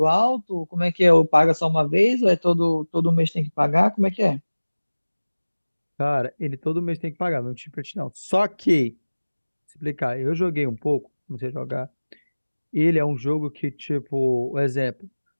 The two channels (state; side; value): inverted; both; correlation -1.00